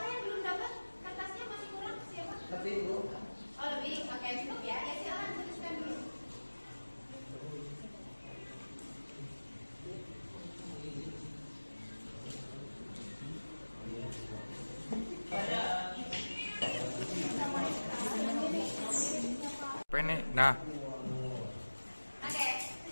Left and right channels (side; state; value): both; inverted; correlation -1.00